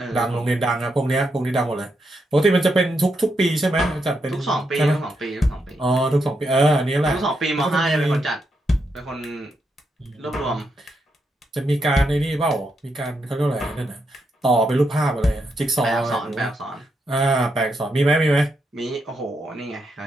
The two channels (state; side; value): normal; both; correlation 0.82